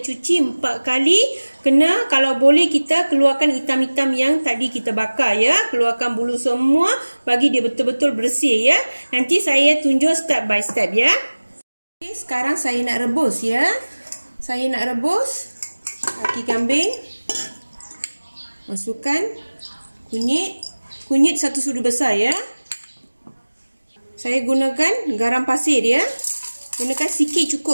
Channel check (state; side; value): inverted; both; correlation -1.00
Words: 4 kali. Kena, kalau boleh kita keluarkan hitam-hitam yang tadi kita bakar ya. Keluarkan bulu semua. Bagi dia betul-betul bersih ya. Nanti saya tunjuk step by step ya. Okey, sekarang saya nak rebus ya. Saya nak rebus kaki kambing. Masukkan kunyit. Kunyit 1 sudu besar ya. Saya gunakan garam pasir ya. Gunakan sikit